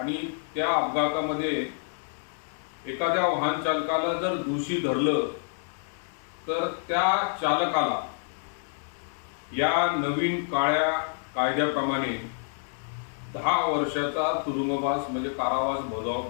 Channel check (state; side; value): silent; right; 59 dB below the other